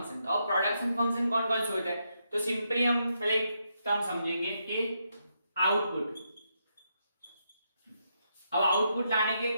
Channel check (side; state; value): both; inverted; correlation -0.80